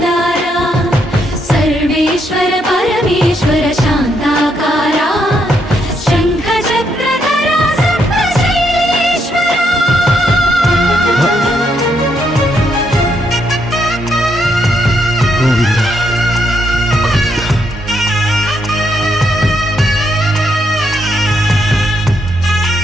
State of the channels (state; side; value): normal; both; correlation 0.76